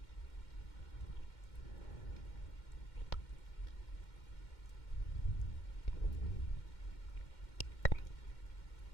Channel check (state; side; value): late; right; 2.1 ms